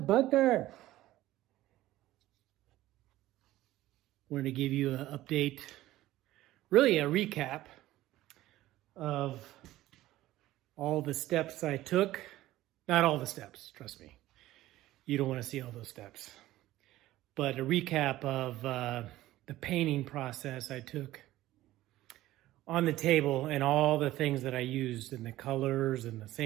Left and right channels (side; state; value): left; quieter; 15.7 dB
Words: Wanted to give you an update, really a recap of all the steps I took. Not all the steps, trust me. You don't want to see all those steps. But a recap of the painting process I took on the table and all the things that I used and the colors and the